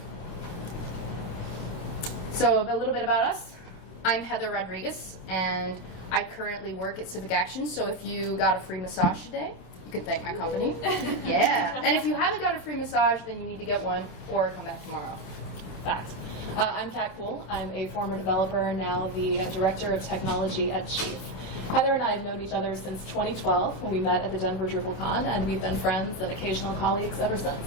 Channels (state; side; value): late; right; 27 ms